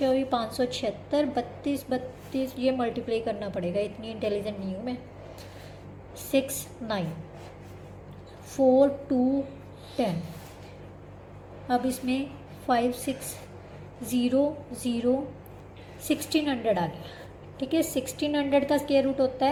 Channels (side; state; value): both; identical; correlation 1.00